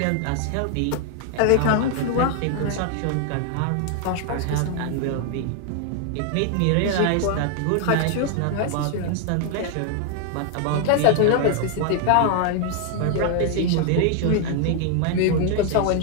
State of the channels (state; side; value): different; both; correlation 0.00